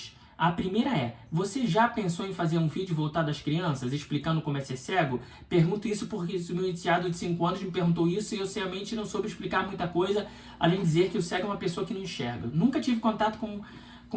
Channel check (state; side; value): identical; both; correlation 1.00